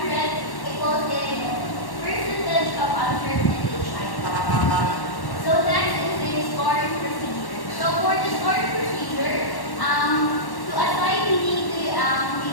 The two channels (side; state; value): right; late; 1.1 ms